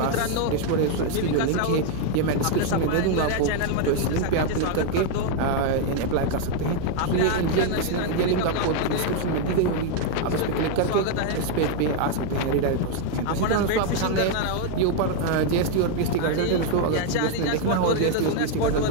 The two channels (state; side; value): different; both; correlation 0.01